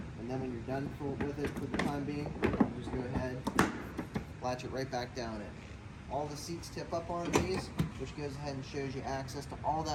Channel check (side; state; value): both; identical; correlation 1.00